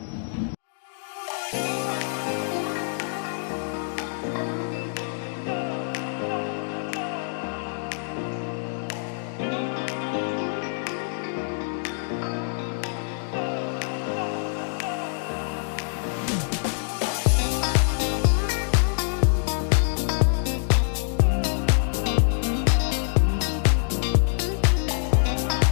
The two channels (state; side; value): silent; right; digital silence